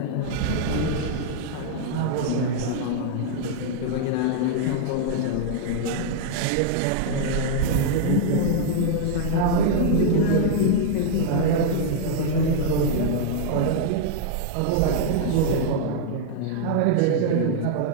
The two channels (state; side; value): different; both; correlation -0.01